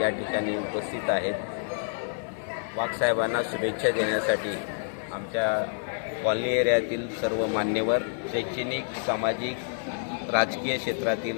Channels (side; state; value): right; silent; digital silence